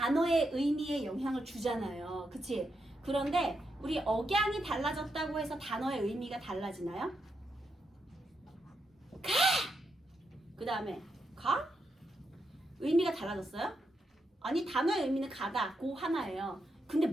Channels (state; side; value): normal; both; correlation 0.83